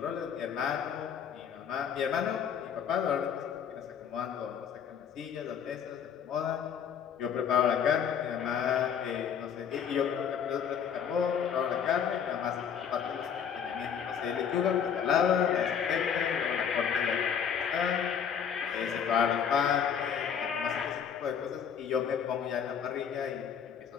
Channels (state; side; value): quieter; right; 7.8 dB